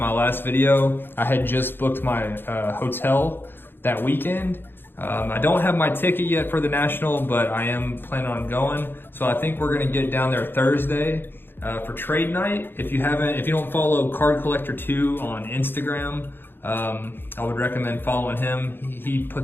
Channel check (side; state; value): right; late; 0.10 ms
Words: last video. I had just booked my hotel that weekend. I don't have my ticket yet for the National, but I am planning on going. So I think we're gonna get down there Thursday for trade night. If you don't follow Card Collector 2 on Instagram, I would recommend following him. He